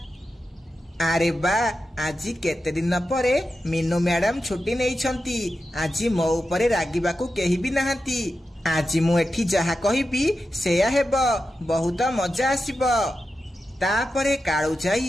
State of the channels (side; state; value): both; normal; correlation 0.90